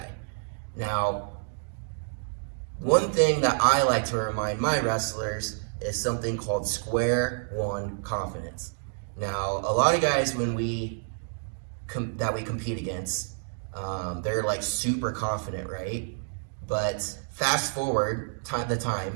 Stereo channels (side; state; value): left; silent; digital silence